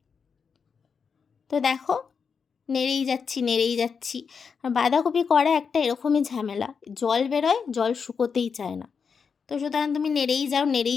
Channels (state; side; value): quieter; right; 6.0 dB